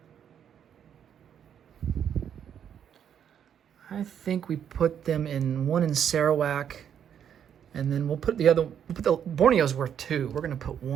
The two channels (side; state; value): left; quieter; 8.8 dB